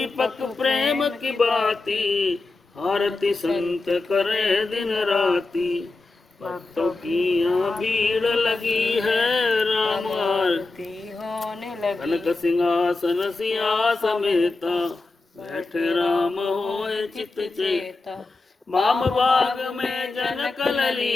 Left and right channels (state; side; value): quieter; right; 3.4 dB